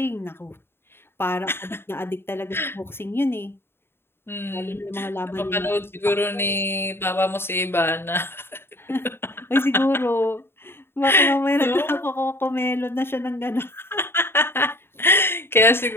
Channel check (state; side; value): late; right; 0.11 ms